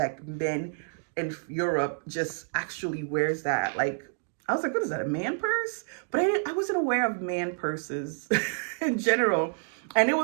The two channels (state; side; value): silent; left; digital silence